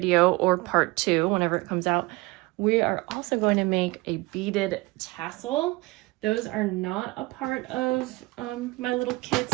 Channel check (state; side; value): quieter; left; 22.9 dB